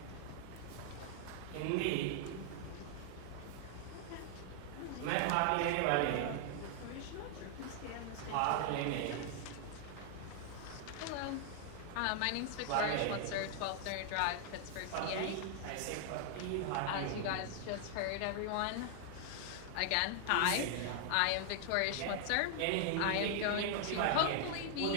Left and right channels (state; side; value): different; both; correlation 0.00